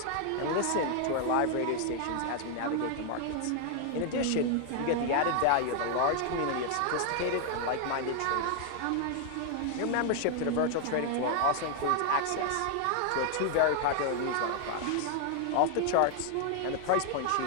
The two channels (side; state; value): both; different; correlation 0.00